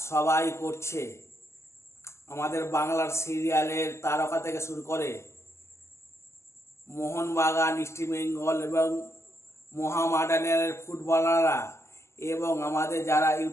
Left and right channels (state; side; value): late; right; 0.13 ms